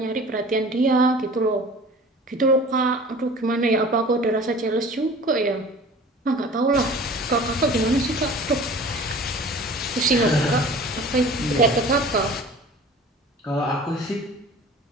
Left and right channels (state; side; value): normal; both; correlation 0.43